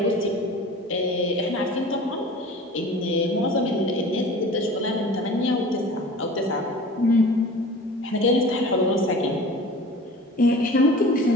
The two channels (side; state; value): both; normal; correlation 0.40